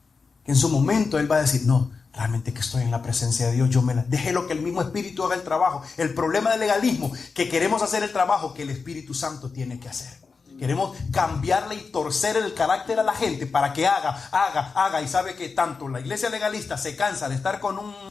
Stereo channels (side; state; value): right; quieter; 4.8 dB